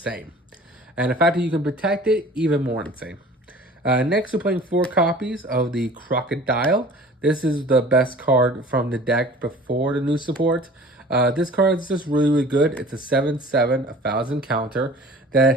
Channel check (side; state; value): both; normal; correlation 0.45